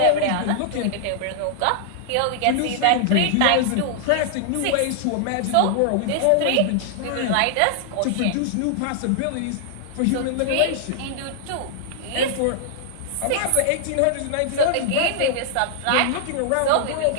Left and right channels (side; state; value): both; different; correlation -0.01